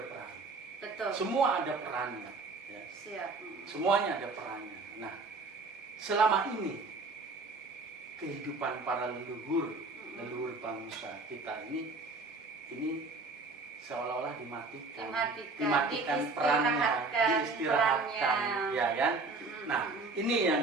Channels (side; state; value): left; quieter; 3.7 dB